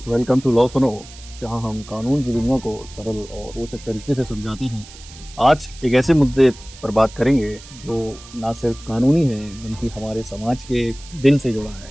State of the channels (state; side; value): noise; right; hiss, 19 dB below the sound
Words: welcome to law सुनो, जहां हम कानून की दुनिया को सरल और रोचक तरीके से समझाते हैं। आज एक ऐसे मुद्दे पर बात करेंगे जो ना सिर्फ कानूनी है बल्कि हमारे समाज के दिल से जुड़ा है।